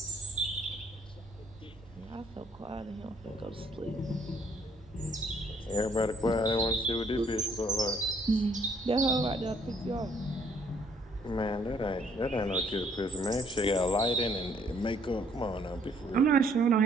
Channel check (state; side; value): normal; both; correlation 0.65